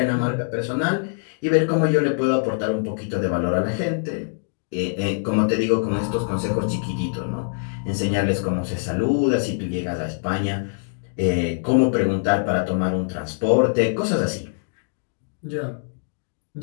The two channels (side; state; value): right; silent; digital silence